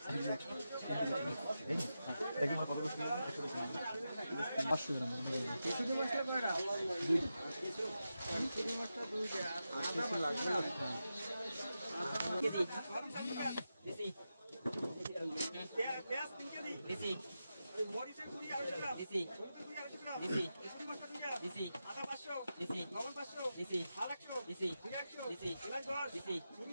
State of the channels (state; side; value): inverted; both; correlation -0.90